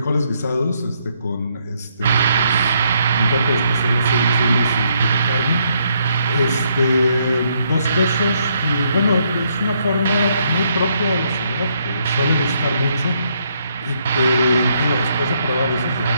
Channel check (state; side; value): inverted; both; correlation -0.73